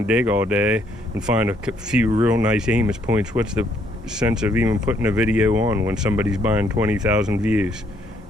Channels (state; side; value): normal; both; correlation 0.69